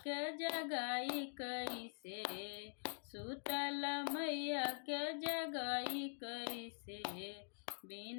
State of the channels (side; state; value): right; silent; digital silence